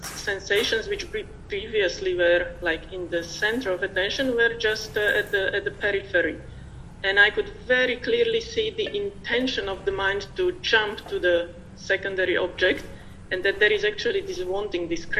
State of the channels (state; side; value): identical; both; correlation 1.00